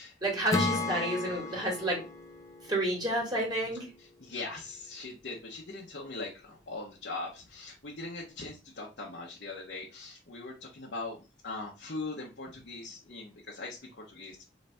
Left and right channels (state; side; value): normal; both; correlation 0.32